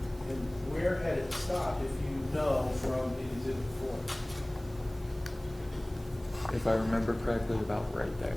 And where had it stopped, if you know, from the exhibit 4? If I remember correctly, about right there.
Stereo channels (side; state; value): right; noise; hiss, 24 dB below the sound